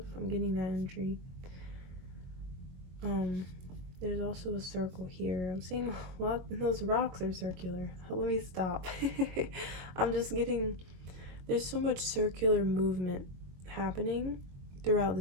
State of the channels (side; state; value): left; late; 22 ms